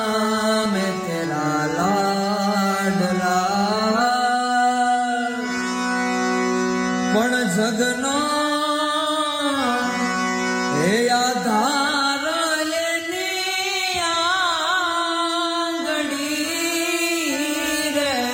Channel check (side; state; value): both; identical; correlation 1.00